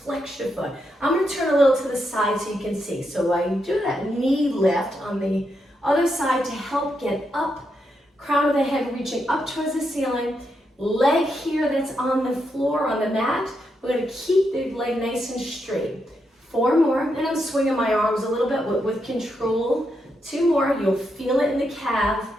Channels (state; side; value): normal; both; correlation 0.82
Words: your foot. I'm gonna turn a little to the side so you can see. So I do that knee lift on the other side to help get up, crown of the head reaching up towards the ceiling, leg here that's on the floor, on the mat. We're gonna keep the leg nice and straight. 4 more, and I'm swinging my arms a little bit with control. 2 more, you'll feel it in the calf,